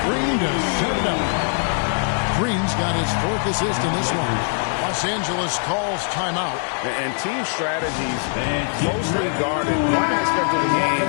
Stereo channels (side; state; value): right; silent; 64 dB below the other